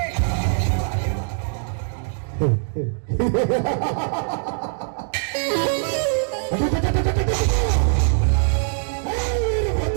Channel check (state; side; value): silent; left; digital silence